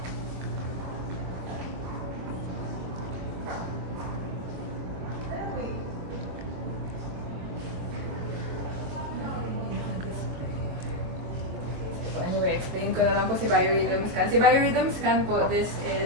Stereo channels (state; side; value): late; left; 23 ms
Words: Anyway, explain ko na lang po si biorhythm scan. Si biorhythm scan po, this